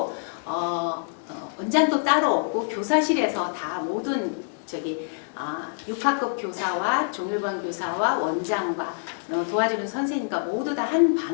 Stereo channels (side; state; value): right; silent; digital silence